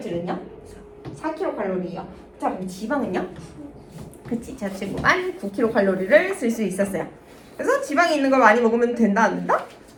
4kcal이요. 자, 그럼 지방은요? 그치, 저 친구만 9kcal를 쓸 수 있었어요. 그래서 지방이 있는 걸 많이 먹으면 된다, 안 된다?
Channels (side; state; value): both; identical; correlation 1.00